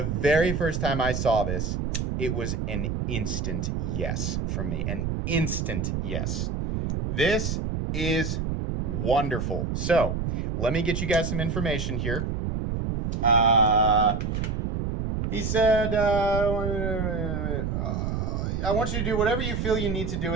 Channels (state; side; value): noise; right; rumble, 1 dB below the sound